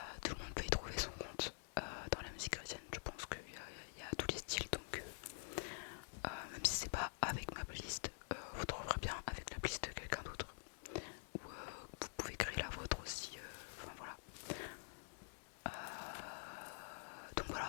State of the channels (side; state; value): right; silent; digital silence